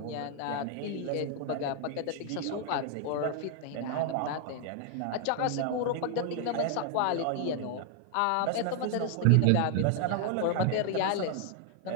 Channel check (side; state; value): both; different; correlation 0.00